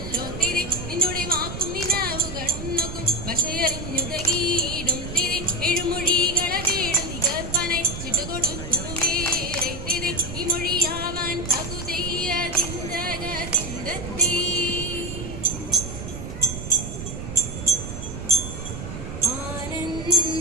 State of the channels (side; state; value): right; noise; rumble, 7 dB below the sound